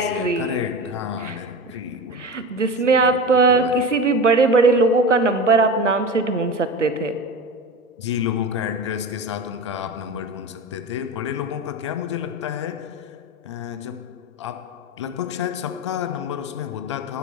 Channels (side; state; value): both; normal; correlation 0.28